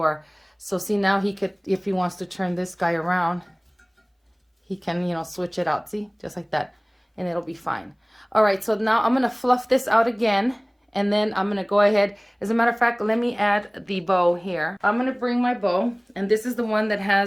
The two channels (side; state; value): both; identical; correlation 1.00